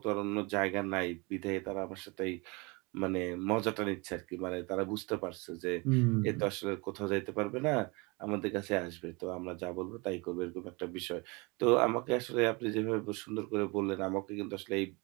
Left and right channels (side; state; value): left; quieter; 27.8 dB